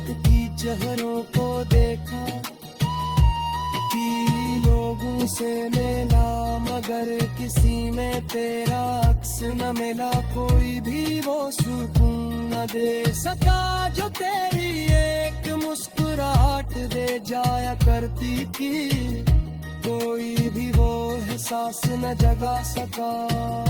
की चेहरों को देखा कि लोगों से मिला, मगर किसी में तेरा अक्स न मिला। कोई भी वो सुकून न दे सका जो तेरी एक मुस्कुराहट दे जाया करती थी। कोई भी वो एहसास न जगा सका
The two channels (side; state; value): both; identical; correlation 1.00